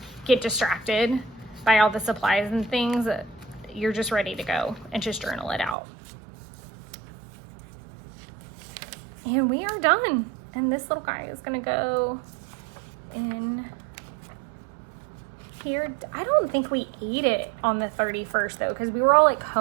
get distracted by all the supplies and things. You're just ready to go and just journal it out. And we are done. And this little guy is gonna go in here. I don't think we ate it on the 31st though, because we were all like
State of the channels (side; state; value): left; drops out; at 5.8 s